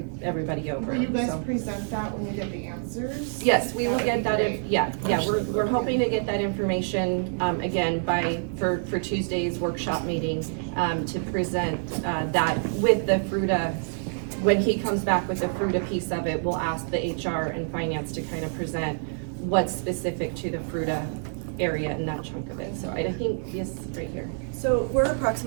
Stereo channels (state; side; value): silent; left; 57 dB below the other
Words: over. Will you guys So. present that when you get the answers? Yes, we will get that, great. we're hoping to get that information, again, for Tuesday's workshop meeting, to present, that with the FRUTA. When he comes back with the FRUTA piece of it, we'll ask the HR and finance to kind of present what's specific to the FRUTA area and that chunk of it. So I think, yes, right here. So we're